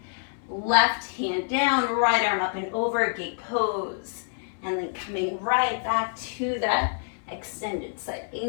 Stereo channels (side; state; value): right; silent; digital silence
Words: Left hand down, right arm up and over, gate pose. And then coming right back to that extended side